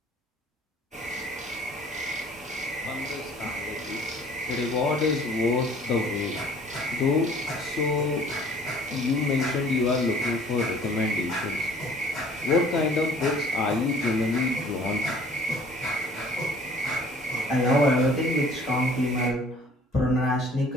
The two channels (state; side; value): normal; both; correlation 0.53